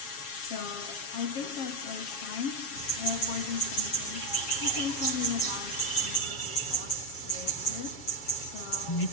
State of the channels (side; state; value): right; late; 7.2 ms